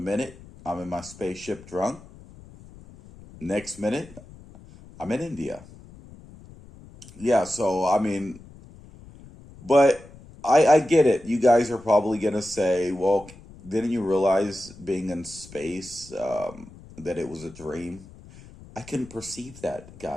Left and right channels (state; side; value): noise; left; rumble, 20 dB below the sound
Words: minute I'm in my spaceship drunk. Next minute I'm in India. Yeah, so but I get it. You guys are probably gonna say, well, didn't you realize being in space that it was a dream? I couldn't perceive that,